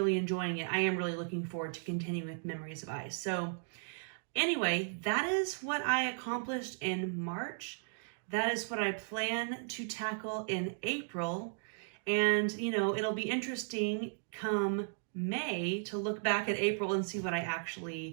enjoying it, I am really looking forward to continuing with Memories of Ice. So anyway, that is what I accomplished in March. That is what I plan to tackle in April. And, you know, it'll be interesting come May to look back at April and see what I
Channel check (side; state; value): left; silent; digital silence